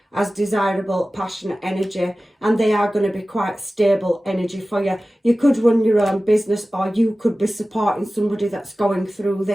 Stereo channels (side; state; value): both; normal; correlation 0.96